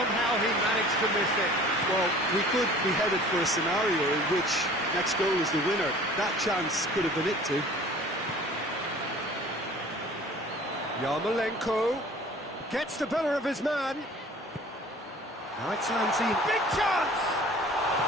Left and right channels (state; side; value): normal; both; correlation 0.47